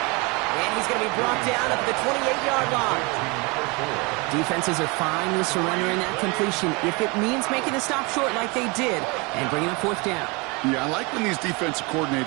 And he's going to be brought down at the 28-yard line. Defenses are fine with surrendering that completion if it means making a stop short like they did and bringing up 4th down. Yeah, I like when these defensive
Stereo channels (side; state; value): left; quieter; 27.9 dB